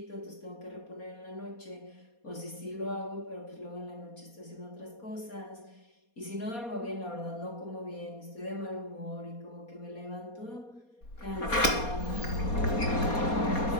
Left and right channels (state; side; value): late; right; 4.2 ms